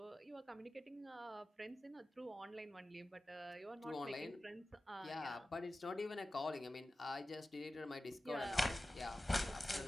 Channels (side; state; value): both; normal; correlation 0.95